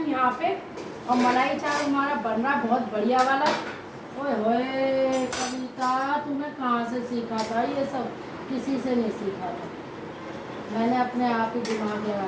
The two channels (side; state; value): both; identical; correlation 1.00